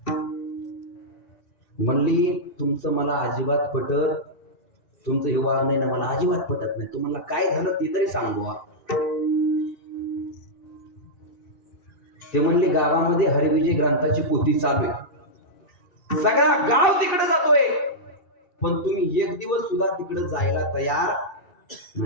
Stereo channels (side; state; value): right; late; 1.9 ms